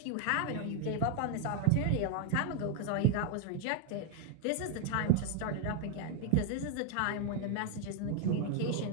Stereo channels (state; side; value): different; both; correlation 0.01